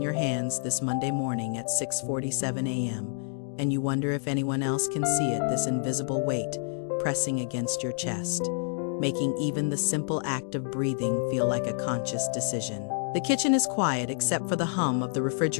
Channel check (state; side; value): silent; right; digital silence